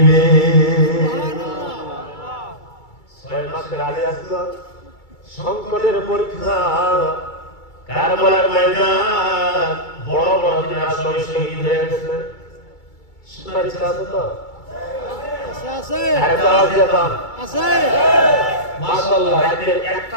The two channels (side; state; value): right; late; 2.3 ms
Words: 6 মাসের আগে আসলো সংকটের পরীক্ষা, কারবালার ময়দান, বড় বড় যারা শহীদ হয়ে গেছে। শোনার ইচ্ছা আছে তো? আছে। মাশাআল্লাহ, রাতে 1টা